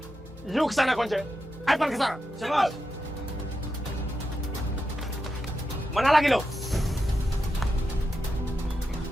You kesana, Konce. Ivan kesana. Siapa? Mana lagi lo?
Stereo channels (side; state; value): both; normal; correlation 0.88